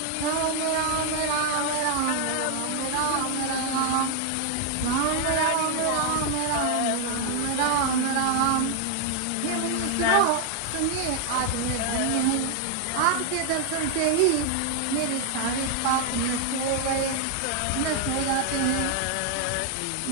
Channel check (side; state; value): both; different; correlation 0.00